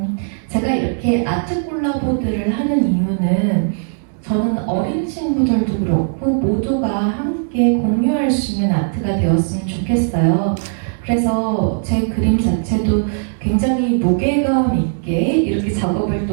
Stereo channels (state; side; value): silent; left; digital silence